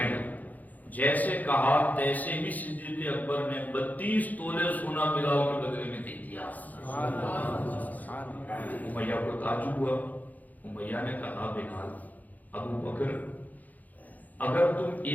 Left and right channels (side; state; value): right; late; 0.081 ms